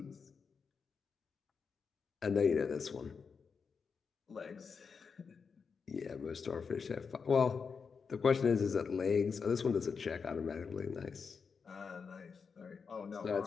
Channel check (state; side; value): quieter; right; 5.6 dB